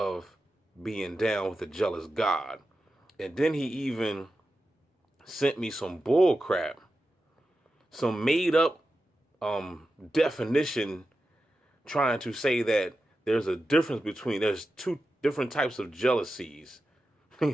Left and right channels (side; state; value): both; normal; correlation 0.91